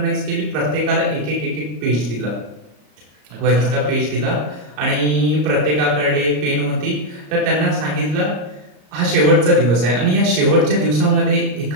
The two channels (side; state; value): left; late; 33 ms